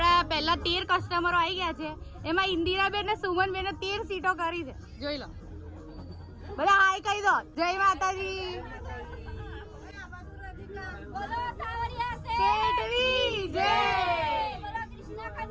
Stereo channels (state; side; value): identical; both; correlation 1.00